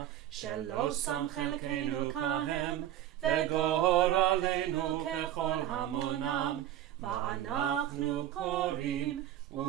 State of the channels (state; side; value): quieter; left; 12.3 dB